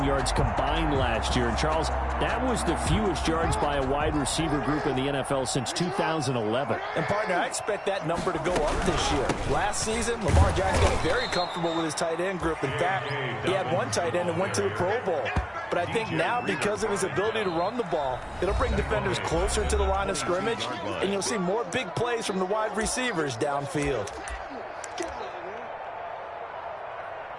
yards combined last year. And, Charles, that was the fewest yards by a wide receiver group in the NFL since 2011. And, partner, I expect that number to go up this year. Last season, Lamar Jackson got very comfortable with his tight end group. In fact, he had one tight end that went to the Pro Bowl. But I think now, because of his ability to run the ball, it'll bring defenders closer to the line of scrimmage, and you'll see more big plays from the wide receivers downfield.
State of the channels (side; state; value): both; identical; correlation 1.00